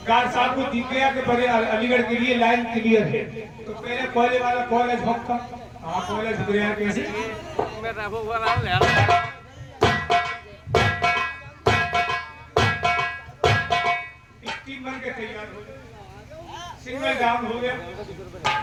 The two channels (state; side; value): identical; both; correlation 1.00